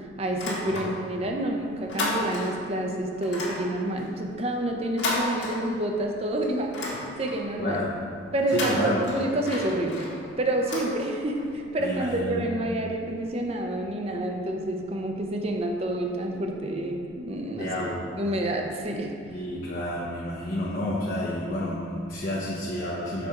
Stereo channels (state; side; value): noise; right; rumble, 23 dB below the sound